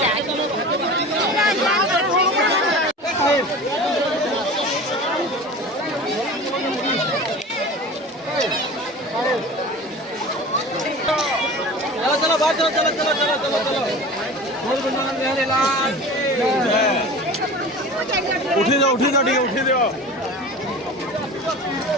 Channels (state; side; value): normal; both; correlation 0.36